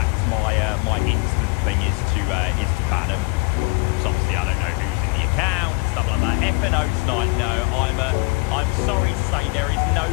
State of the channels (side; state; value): right; quieter; 29.8 dB